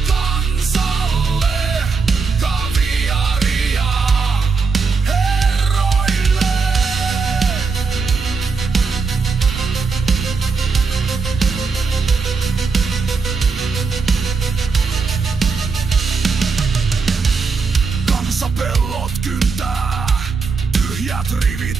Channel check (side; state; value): left; quieter; 4.8 dB